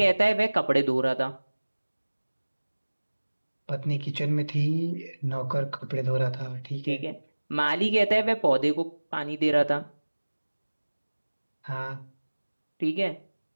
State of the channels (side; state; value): both; inverted; correlation -1.00